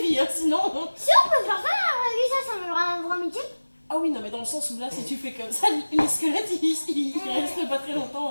vie, hein, sinon. Si on peut faire ça dans la vraie vie, ça me rend un vrai métier. Ah oui, non, mais dans le sens où là, si tu fais comme ça, les squelettes, ils restent pas très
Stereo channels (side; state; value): both; inverted; correlation -1.00